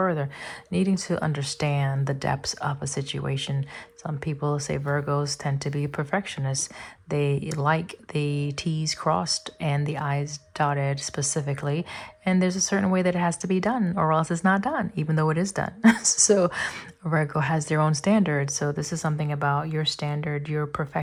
needing to understand the depths of a situation. Some people say Virgos tend to be perfectionists. They like the T's crossed and the I's dotted specifically. And there's a certain way that it has to be done, or else it's not done, even though it is done. So Virgo has their own standards. So this is something about your standard, your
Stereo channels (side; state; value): both; identical; correlation 1.00